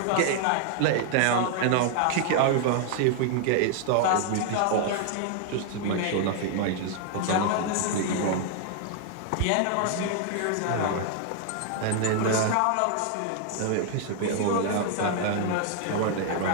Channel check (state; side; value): different; both; correlation 0.00